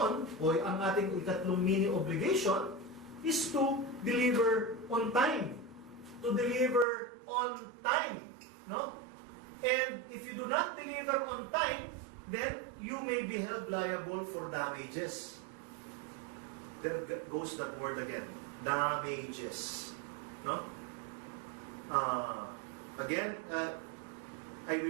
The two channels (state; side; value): drops out; left; at 6.9 s